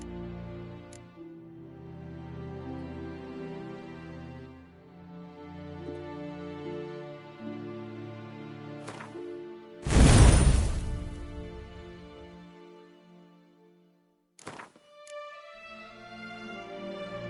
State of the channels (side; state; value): both; identical; correlation 1.00